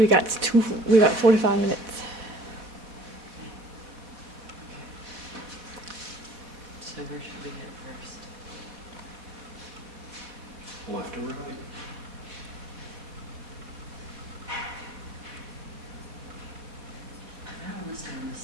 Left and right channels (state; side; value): late; left; 4.1 ms